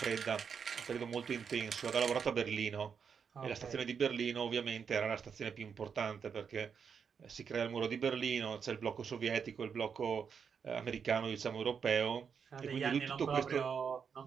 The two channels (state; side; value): quieter; left; 6.6 dB